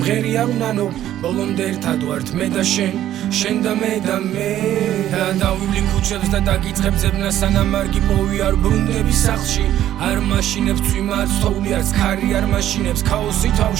არ უნანო ბოლომდე ერთად ვართ მე და შენ და მე და დავივლი ქუჩებს და დაგიწყებ ძებნა სანამ არ გიპოვი არ ბრუნდები სახლში არ მაშინებს წვიმა არ ცხოვლი არც ქარი არ მაშინებს ქაოსი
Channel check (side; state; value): left; quieter; 12.3 dB